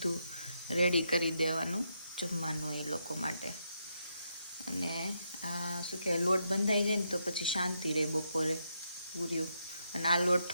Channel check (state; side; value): inverted; both; correlation -0.80